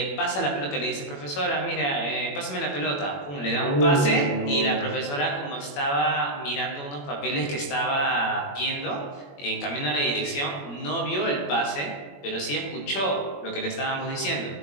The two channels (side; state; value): right; late; 21 ms